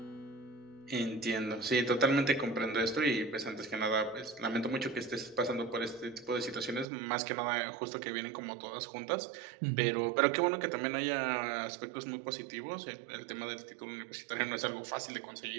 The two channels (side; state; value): left; drops out; at 6.9 s